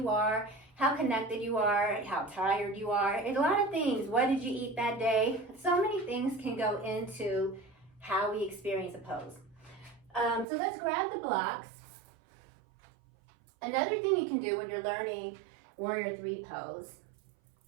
are, how connected you are, how tired you are. A lot of things. What did you eat that day? So many things can go into how we experience a pose. So let's grab the blocks. Another thing you can do when you're learning Warrior III Pose,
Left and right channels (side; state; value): left; drops out; at 10.5 s